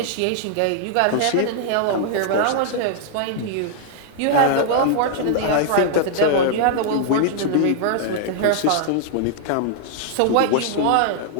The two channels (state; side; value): different; both; correlation -0.01